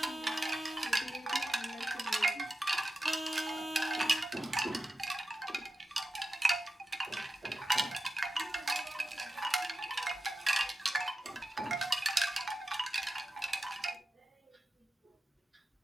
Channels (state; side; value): normal; both; correlation 0.92